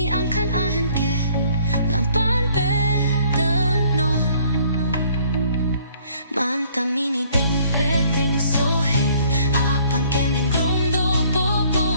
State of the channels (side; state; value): both; inverted; correlation -0.60